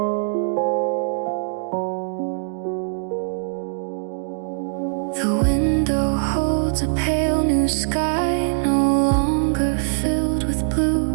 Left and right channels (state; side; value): silent; left; digital silence